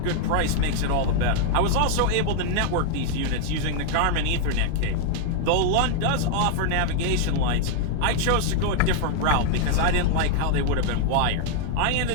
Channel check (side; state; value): both; different; correlation 0.00